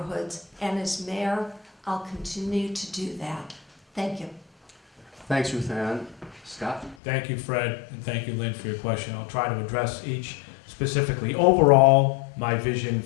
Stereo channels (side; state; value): right; drops out; at 7.0 s